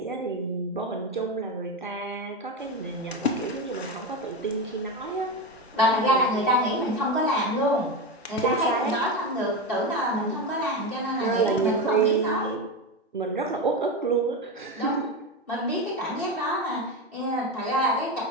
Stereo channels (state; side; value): normal; both; correlation 0.17